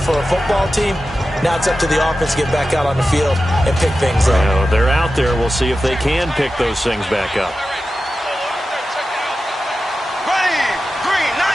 a football team. Now it's up to the offense to get back out on the field and pick things up. Well, they're out there. We'll see if they can pick those things back up.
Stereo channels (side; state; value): both; normal; correlation 0.93